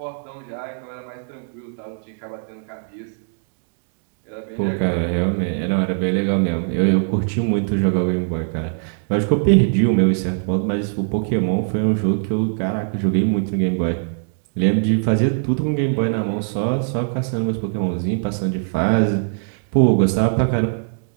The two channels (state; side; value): silent; left; digital silence